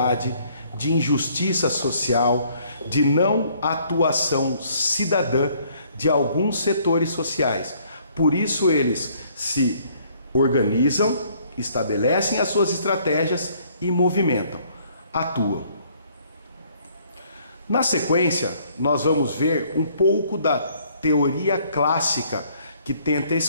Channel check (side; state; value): both; inverted; correlation -0.63